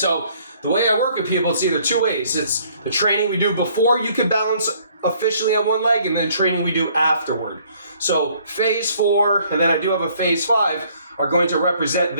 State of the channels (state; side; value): inverted; both; correlation -0.62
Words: the way I work with people, it's either 2 ways. It's the training we do before you can balance officially on one leg, and then training we do afterward. So phase 4, and then I do have a phase 5, are going to represent